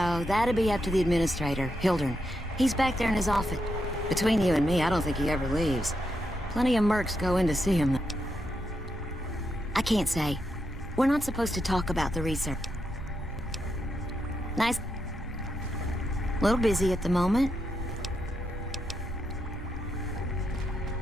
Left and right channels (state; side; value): normal; both; correlation 0.83